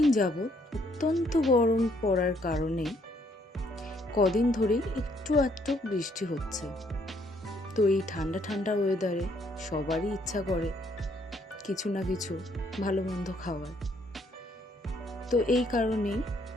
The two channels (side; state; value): both; normal; correlation 0.68